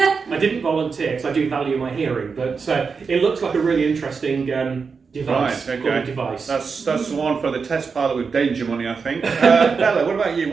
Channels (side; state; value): left; quieter; 5.3 dB